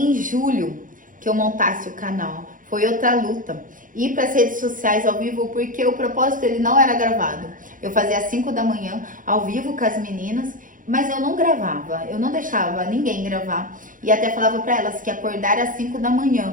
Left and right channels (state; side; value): late; left; 0.39 ms